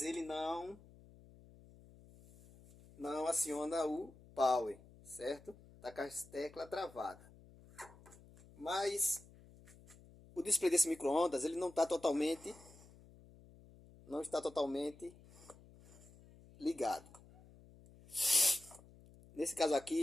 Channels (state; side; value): noise; left; hum, 23 dB below the sound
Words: ele não aciona o power, certo? Tá com as teclas travadas. Mas o display desse micro-ondas ele não está totalmente ligado. Nesse caso